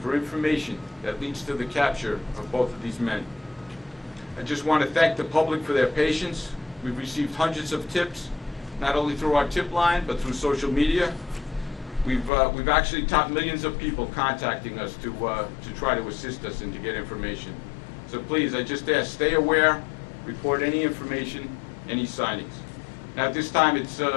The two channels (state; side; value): drops out; right; at 12.3 s